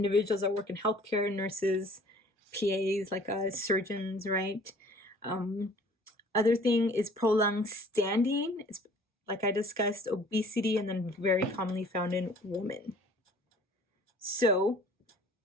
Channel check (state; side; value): normal; both; correlation 0.52